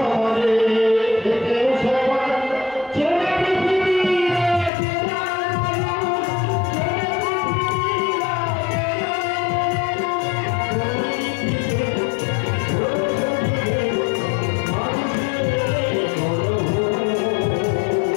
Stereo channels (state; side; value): drops out; right; at 4.7 s